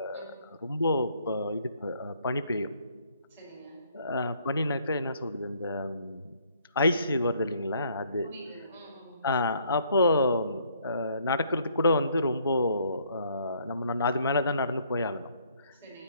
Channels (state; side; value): inverted; both; correlation -0.65